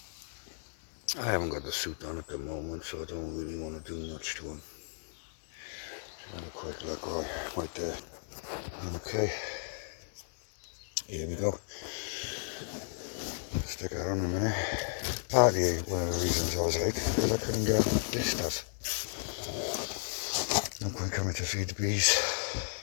I haven't got the suit on at the moment, so I don't really want to do much to him. Just have a quick look right there. Okay, here we go. Stick that on a minute. Partly one of the reasons I was late, because I couldn't get this stuff. No point coming to feed the bees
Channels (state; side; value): silent; right; 55 dB below the other